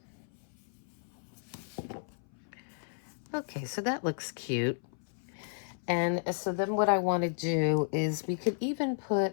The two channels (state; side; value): silent; right; 56 dB below the other